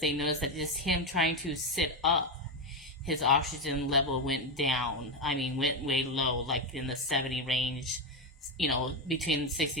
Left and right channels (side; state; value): both; normal; correlation 0.10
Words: they noticed that just him trying to sit up, his oxygen level went down. I mean, went way low, like in the 70 range, between 60